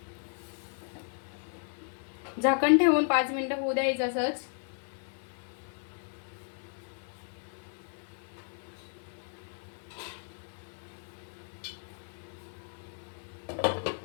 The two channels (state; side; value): silent; right; 55 dB below the other